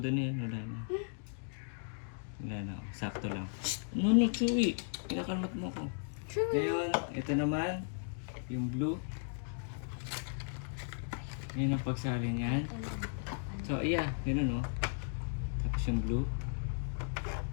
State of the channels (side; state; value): right; silent; digital silence